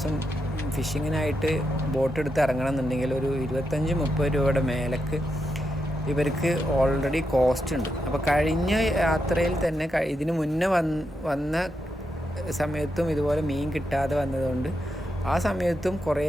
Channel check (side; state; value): both; normal; correlation 0.84